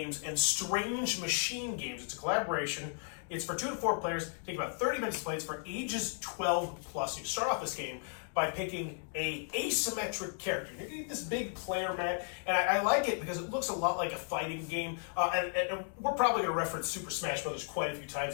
and Strange Machine Games. It's a collaboration. It's for 2 to 4 players. Take about 30 minutes to play. It's for ages 12 plus. You start off this game by picking a asymmetric character. You get this big player mat, and I like it because it looks a lot like a fighting game. And we're probably going to reference Super Smash Brothers quite a few times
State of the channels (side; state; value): right; silent; 55 dB below the other